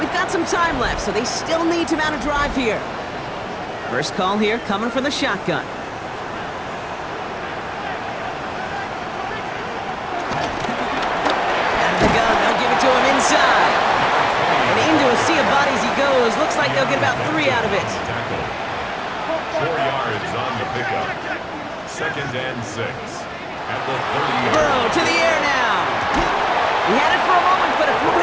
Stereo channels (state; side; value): identical; both; correlation 1.00